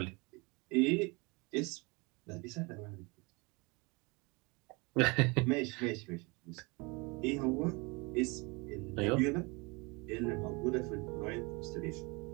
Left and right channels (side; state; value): left; quieter; 27.7 dB